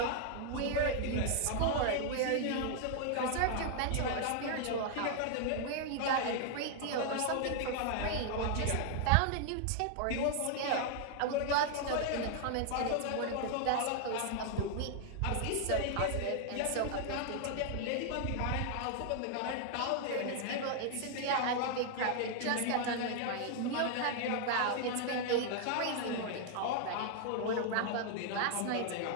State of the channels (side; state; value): both; different; correlation 0.00